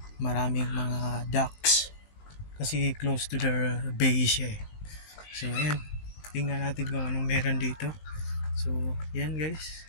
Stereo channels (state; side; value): late; right; 19 ms